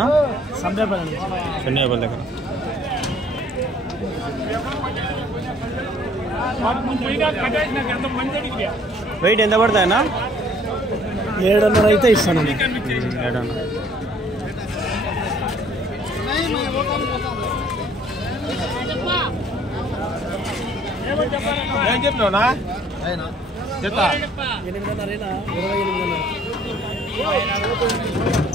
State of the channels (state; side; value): normal; both; correlation 0.58